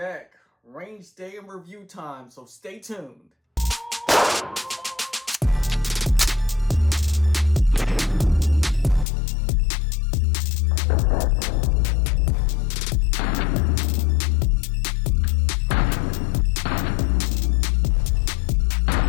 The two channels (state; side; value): drops out; right; at 9.1 s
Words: Range day and review time, so stay tuned.